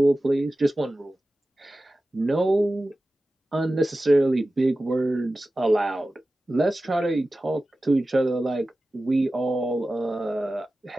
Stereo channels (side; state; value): both; normal; correlation 0.95